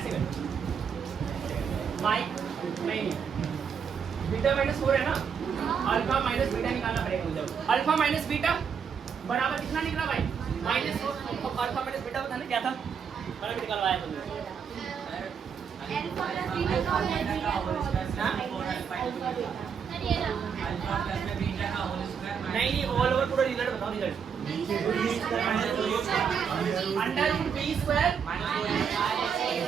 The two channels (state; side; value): quieter; left; 6.9 dB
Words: कर माइक नहीं, बीटा माइनस 4 है ना, अल्फा माइनस बीटा निकालना पड़ेगा मुझे। अल्फा माइनस बीटा बराबर कितना निकला भाई, माइनस 4। अल्फा माइनस बीटा बताना क्या था, मैंने भी निकलवाया तुमने। नहीं ऑल ओवर पूरा रिजल्ट बताओ, रिजल्ट अंडर रूट बी स्क्वायर